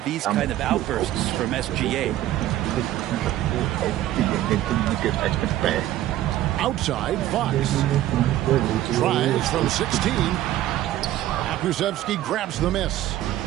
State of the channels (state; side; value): quieter; left; 13.9 dB